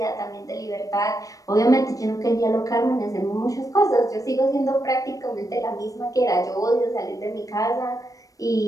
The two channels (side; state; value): right; late; 0.16 ms